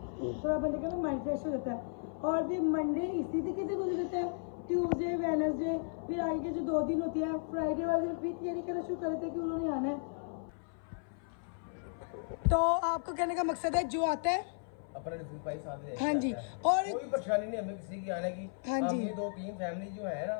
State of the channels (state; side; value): silent; right; 55 dB below the other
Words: थोड़ा बंदे का ना माइंड फ्रेश हो जाता है। और फिर मंडे इसी तरीके से गुजर जाता है, ट्यूसडे वेडनेसडे, फिर आगे के जो 2 दिन होती है, फ्राइडे वाले दिन फिर तैयारी करना शुरू कर देते हैं कि उन्होंने आना है। तो आपको कहने का मकसद है जो आता है अपना भाई साथ ले, हाँ जी, और कोई परेशानी नहीं हमें किसी की आने की। हाँ जी, ये 2-3 फैमिली जो है ना,